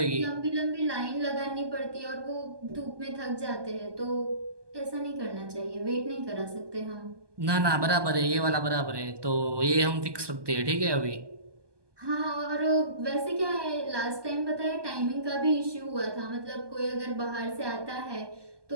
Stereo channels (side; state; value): left; late; 1.2 ms